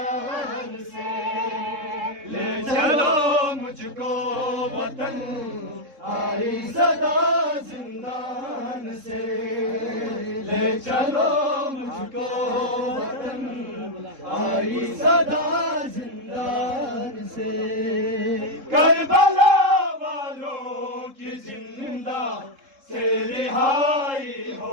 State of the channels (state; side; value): late; left; 3.7 ms